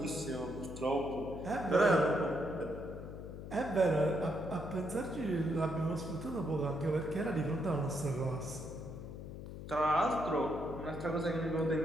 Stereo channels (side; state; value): left; noise; hum, 10 dB below the sound